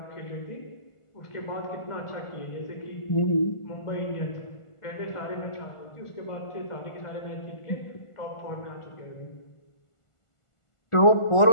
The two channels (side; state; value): right; late; 1.5 ms